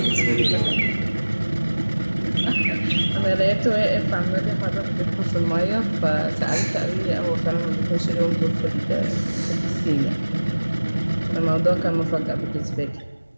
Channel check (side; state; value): both; inverted; correlation -1.00